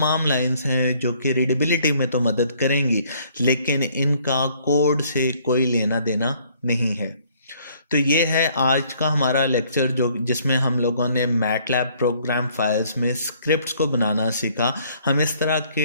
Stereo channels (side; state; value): both; inverted; correlation -0.62